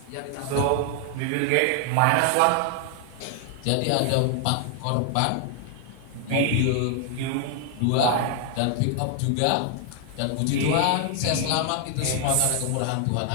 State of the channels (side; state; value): both; different; correlation 0.00